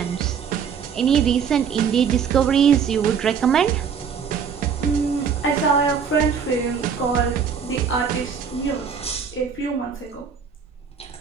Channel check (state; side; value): quieter; left; 6.7 dB